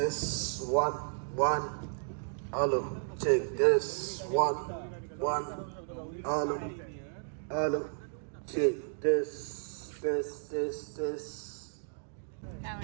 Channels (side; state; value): left; silent; digital silence